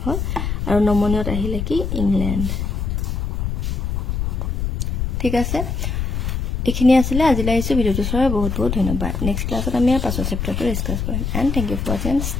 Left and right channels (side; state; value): left; noise; rumble, 1 dB below the sound